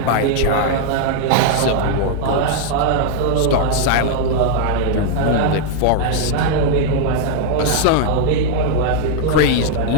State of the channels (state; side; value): different; both; correlation -0.01